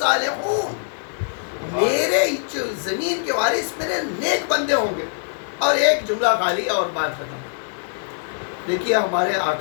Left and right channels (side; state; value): right; silent; 62 dB below the other